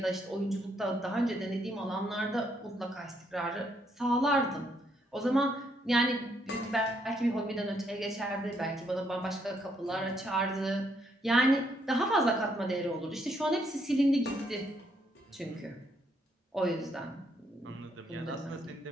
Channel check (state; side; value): normal; both; correlation 0.73